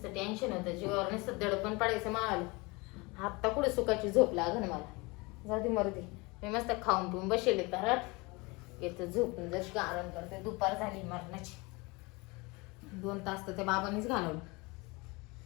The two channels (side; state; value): right; quieter; 25.7 dB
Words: टेन्शन होतं, जीवावर नुसतं दडपण पडायचं मला. आता कुठे सुखाची झोप लागन मला. जाऊ दे मरू दे, मी मस्त खाऊन पिऊन बसेले तरट येतं झोपून जशी आराम करते. दुपार झाली मरणाची, 2 तास तर त्या बाबांनीच घालवलं.